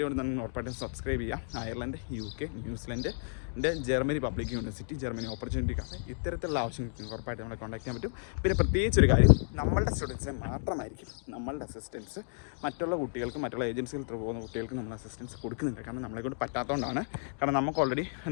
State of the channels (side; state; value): right; silent; digital silence